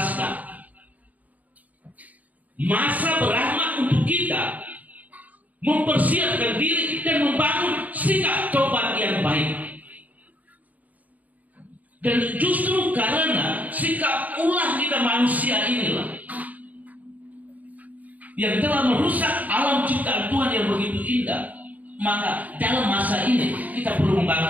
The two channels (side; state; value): left; late; 0.075 ms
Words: Masa berahmat untuk kita mempersiapkan diri dan membangun sikap tobat yang baik. Dan justru karena sikap ulah kita manusia inilah yang telah merusak alam ciptaan Tuhan yang begitu indah. Maka dalam masa ini kita perlu membangun